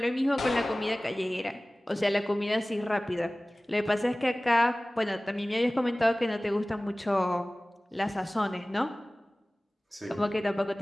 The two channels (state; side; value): normal; both; correlation 0.98